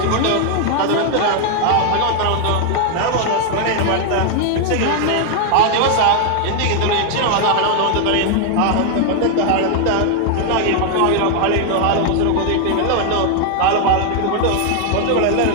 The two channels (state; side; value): different; both; correlation 0.00